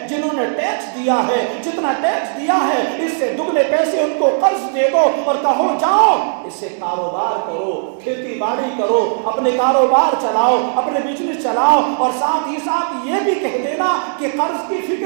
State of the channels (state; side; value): silent; left; 60 dB below the other